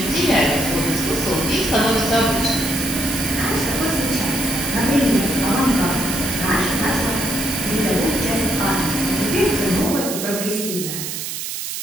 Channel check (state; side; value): noise; right; hiss, 5 dB below the sound